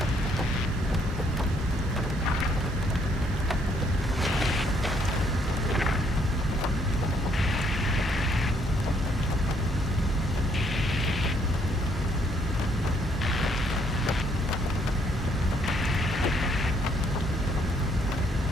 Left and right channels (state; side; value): normal; both; correlation 0.68